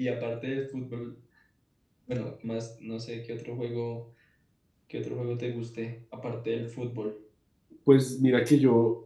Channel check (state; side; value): identical; both; correlation 1.00